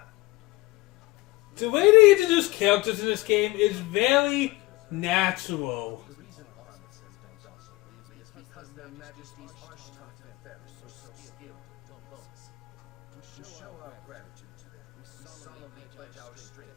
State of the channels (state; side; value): quieter; right; 21.6 dB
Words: The way they introduce characters in this game is very natural. The reason Armis has been docile is because their Majesty's Archtongue Ferris were so skilled in diplomacy. To show our gratitude to them, we solemnly pledge our